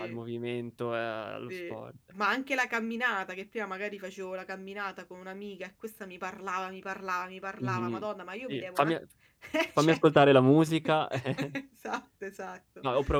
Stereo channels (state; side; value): identical; both; correlation 1.00